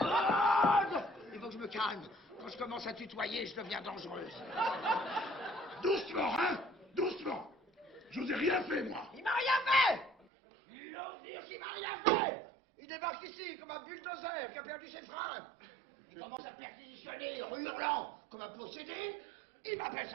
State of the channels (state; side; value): drops out; left; at 10.2 s